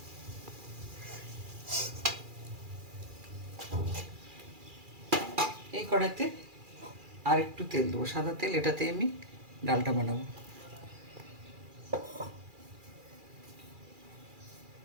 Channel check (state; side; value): late; left; 2.4 ms